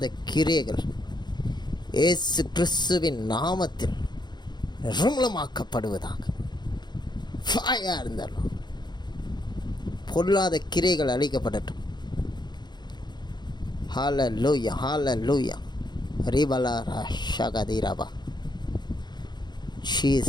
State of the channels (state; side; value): late; right; 0.21 ms